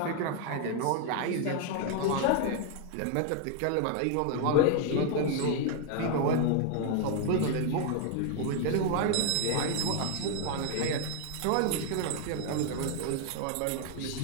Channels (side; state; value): both; different; correlation 0.00